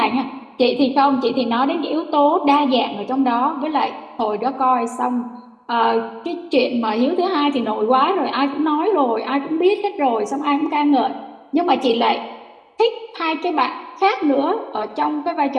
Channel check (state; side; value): identical; both; correlation 1.00